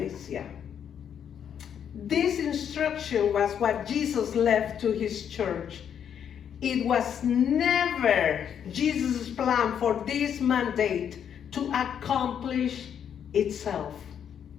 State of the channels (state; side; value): quieter; right; 8.5 dB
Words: This instruction was what Jesus left to His church. It was never Jesus' plan for this mandate to accomplish itself.